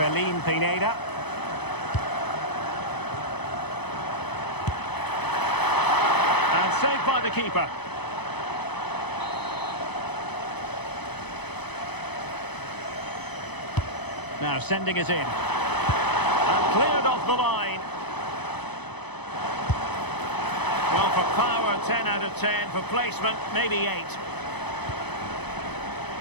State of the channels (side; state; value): right; late; 0.99 ms